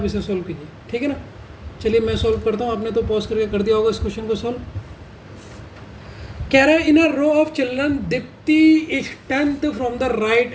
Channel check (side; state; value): both; identical; correlation 1.00